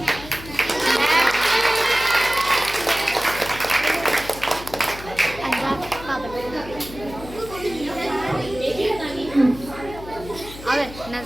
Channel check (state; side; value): noise; left; hum, 14 dB below the sound